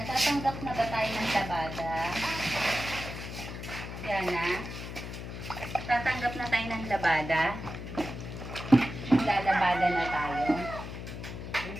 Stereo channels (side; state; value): left; noise; hum, 8 dB below the sound